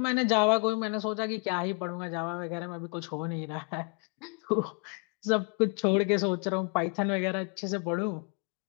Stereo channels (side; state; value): right; quieter; 36.0 dB